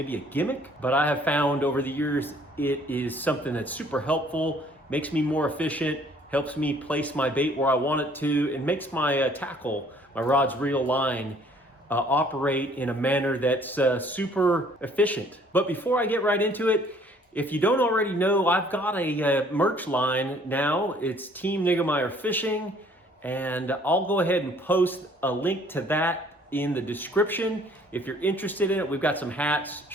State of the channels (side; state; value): both; normal; correlation 0.58